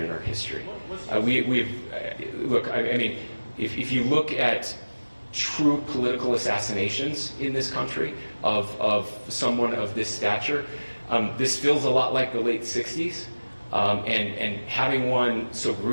in our history? Look, I mean, if you look at true political assassinations in this country of someone of this stature, this feels a lot like the late 60s. And having one so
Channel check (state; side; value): inverted; both; correlation -1.00